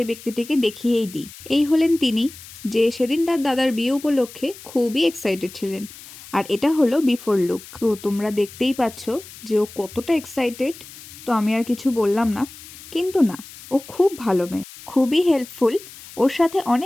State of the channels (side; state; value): left; noise; hiss, 17 dB below the sound